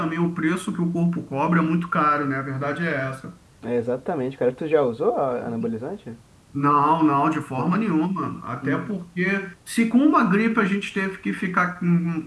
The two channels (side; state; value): both; identical; correlation 1.00